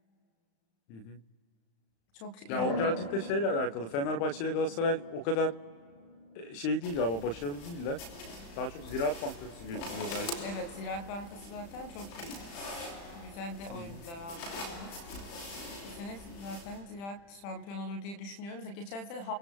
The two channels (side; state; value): right; late; 35 ms